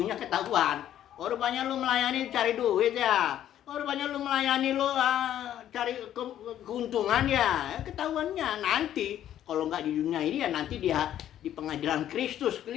ketahuan. Rupanya lu melayani cari duit ya, rupanya lu melayani lu cari keuntungan ya, ketahuannya nanti. Kalau nggak di dunia ini ya nanti dia di pengadilan Kristus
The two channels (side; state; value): right; quieter; 11.3 dB